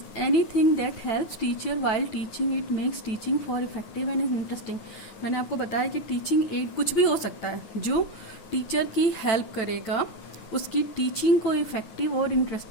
anything that helps teacher while teaching, it makes teaching for effective and interesting. मैंने आपको बताया कि टीचिंग एड कुछ भी हो सकता है जो टीचर की हेल्प करेगा उसकी टीचिंग को इफेक्टिव और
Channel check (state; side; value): late; right; 9.1 ms